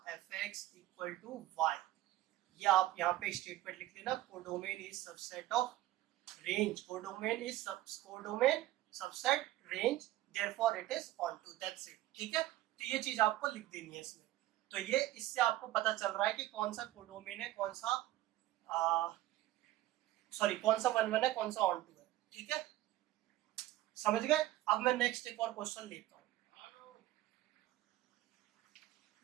fx इक्वल टू y। ये आप यहाँ पे स्टेटमेंट लिख लेना, codomain is subset of range, codomain is codomain subset range, therefore it is onto, that's it, ठीक है। तो ये चीज आपको लिख देनी है इसमें। तो ये इससे आपको पता चल रहा है कि कौन सा कोडोमेन है, कौन सा कौन सा 1 1 है, कौन सा ऑन टू है, ठीक है, समझ गए। अब मैं नेक्स्ट एक और क्वेश्चन लेता हूँ।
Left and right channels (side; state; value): left; quieter; 15.3 dB